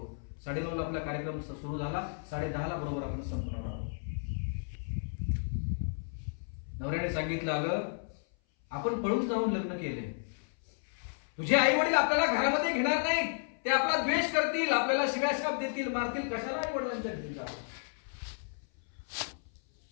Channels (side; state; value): right; silent; 56 dB below the other